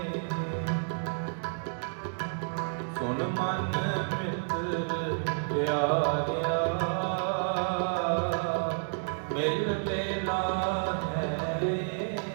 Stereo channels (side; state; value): left; silent; digital silence